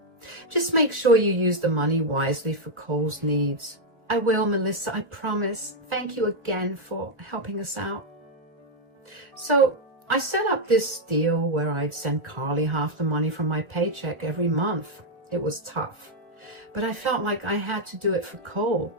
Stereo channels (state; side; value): late; left; 1.4 ms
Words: Just make sure you use the money wisely for Cole's needs. I will, Melissa, I promise. Thank you again for helping us out. So I set up this deal where I'd send Carly half the money from my paycheck every month. It was tough, but I felt like I had to do it for Cole.